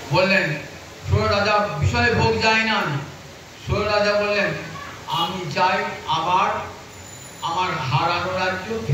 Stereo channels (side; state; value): both; identical; correlation 1.00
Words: বললেন সুর রাজা বিষয় ভোগ যায় না। সুর রাজা বললেন আমি চাই আবার আমার হারানো রাজ্য